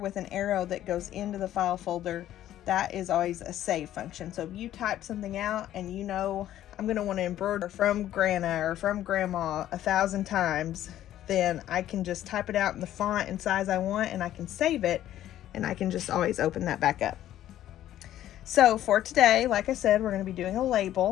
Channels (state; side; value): quieter; right; 12.5 dB